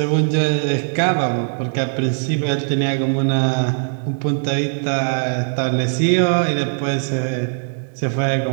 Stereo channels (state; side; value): silent; left; digital silence